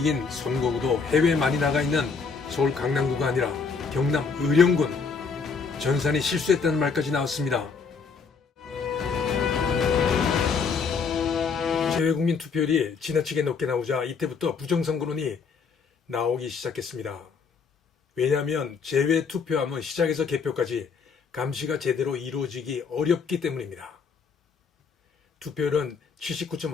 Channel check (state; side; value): quieter; right; 5.3 dB